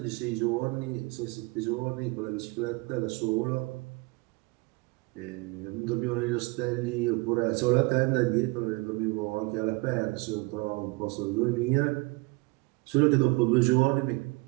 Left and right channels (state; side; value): quieter; left; 26.2 dB